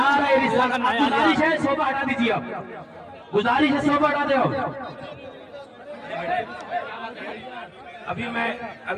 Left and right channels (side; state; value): both; identical; correlation 1.00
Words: رسالت. گزارش ہے صوبہ ہٹا دیجیے، آپ گزارش ہے صوبہ ہٹا دو. ابھی